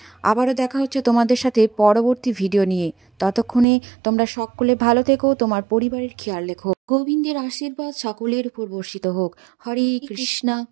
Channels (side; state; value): left; drops out; at 3.7 s